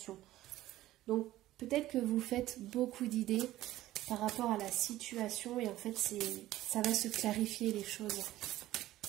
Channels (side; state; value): left; quieter; 15.2 dB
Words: Donc, peut-être que vous faites beaucoup d'idées par rapport à la situation et en fait, ça va se clarifier les choses.